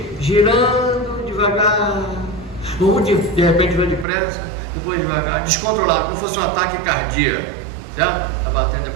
girando devagar, ou de repente vai depressa, depois devagar, descontrolado, como se fosse um ataque cardíaco, certo? Tá batendo,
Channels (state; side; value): drops out; left; at 4.0 s